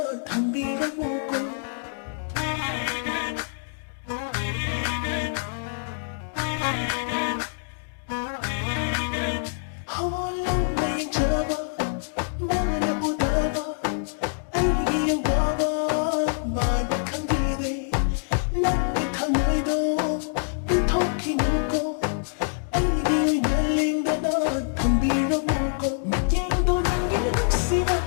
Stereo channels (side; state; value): right; silent; digital silence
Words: 담비랑 먹고 홀로 매일 잡아 마음에 묻어봐 알기 와봐 마음이 감기돼 난게 탕의도 빈토끼 묻고 알기 날린다 너 담비랑 먹고 맥갱도 남기는 씨가